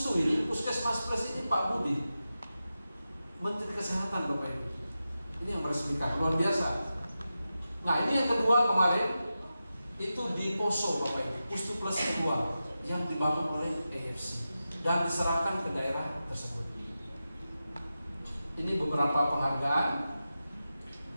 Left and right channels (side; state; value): both; inverted; correlation -0.92